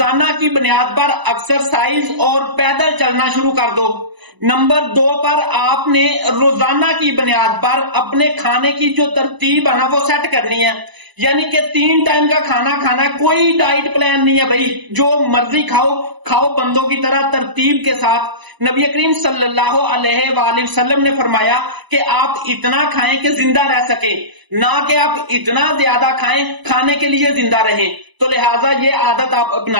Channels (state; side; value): late; left; 1.0 ms